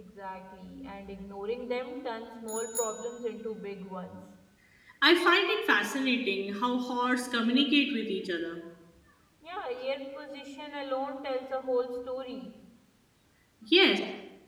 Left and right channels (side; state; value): both; identical; correlation 1.00